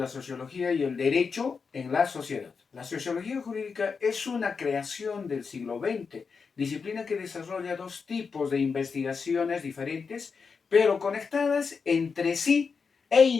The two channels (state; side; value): quieter; right; 5.4 dB